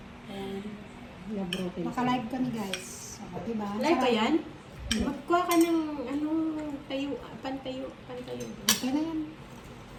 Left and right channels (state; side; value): identical; both; correlation 1.00